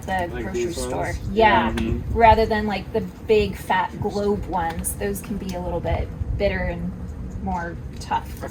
the Like grocery these store. ones? Yeah. Mm-hmm. Rather than like the big fat globe ones. Those can be a little bit bitter and more tough. I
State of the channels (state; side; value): identical; both; correlation 1.00